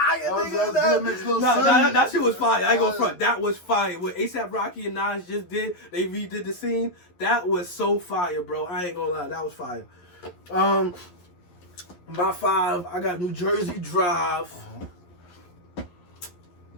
nigga. That shit was fire. I ain't gonna front. That was fire. What A$AP Rocky and Nas just did, they redid the scene. That was so fire, bro. I ain't gonna lie. That was fire. My 5, I got New Jersey Drive.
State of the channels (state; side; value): late; right; 11 ms